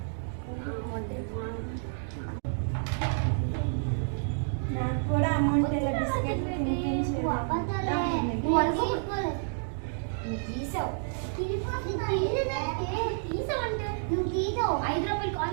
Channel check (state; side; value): silent; left; digital silence